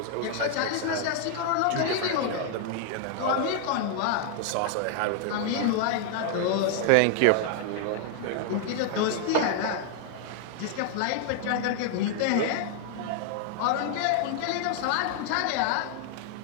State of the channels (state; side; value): different; both; correlation 0.00